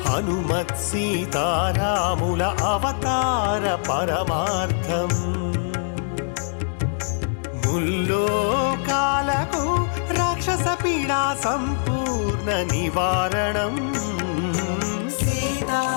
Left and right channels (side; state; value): right; silent; digital silence